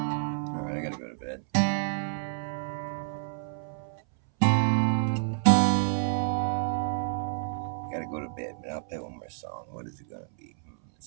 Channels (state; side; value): silent; left; 58 dB below the other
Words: All right, I gotta go to bed. Gotta go to bed, but I'll play one more song. What is it gonna be?